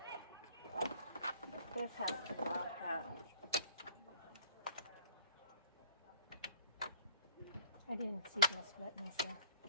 This has to lock up. I didn't see those buttons there.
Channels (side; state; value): both; inverted; correlation -0.56